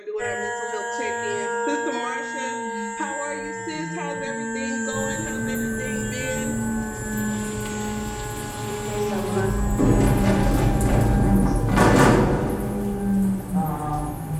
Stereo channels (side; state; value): both; identical; correlation 1.00